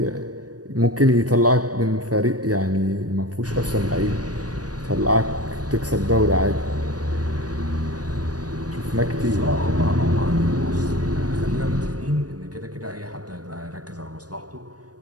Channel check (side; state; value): left; late; 0.68 ms